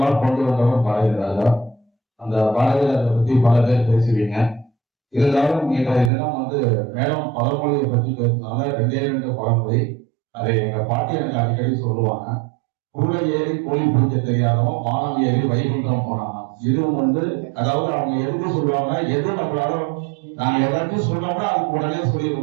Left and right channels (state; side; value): drops out; left; at 6.1 s